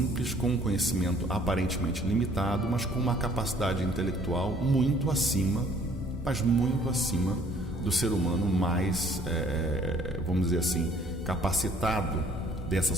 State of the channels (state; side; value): normal; both; correlation 0.58